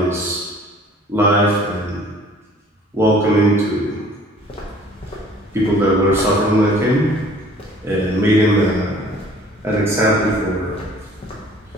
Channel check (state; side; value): normal; both; correlation 0.53